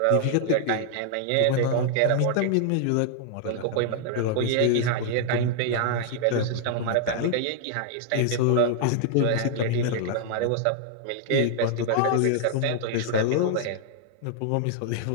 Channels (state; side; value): different; both; correlation 0.00